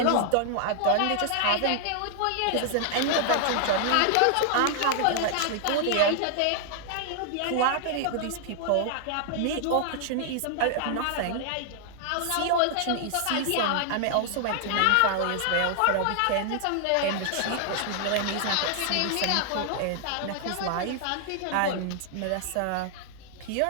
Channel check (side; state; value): both; different; correlation 0.00